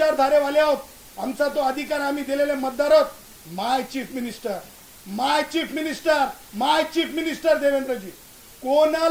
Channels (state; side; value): identical; both; correlation 1.00